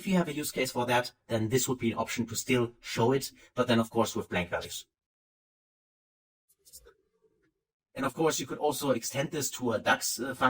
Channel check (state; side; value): identical; both; correlation 1.00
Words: you have a use case for that, then this would be an option to still show it, but then of course with blank values. And of course, you could also extend this to a DAX